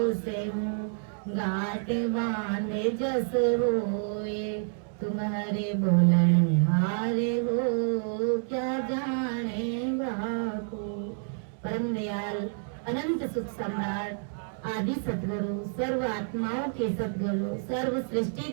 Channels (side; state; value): left; silent; 59 dB below the other